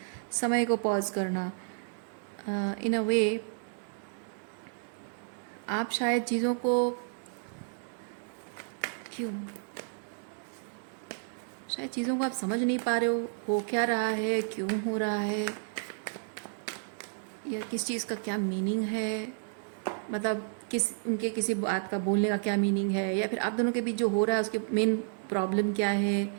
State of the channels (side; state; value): left; silent; digital silence